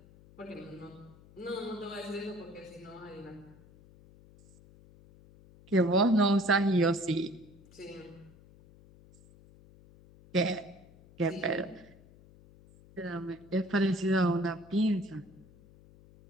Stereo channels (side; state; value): left; noise; hum, 24 dB below the sound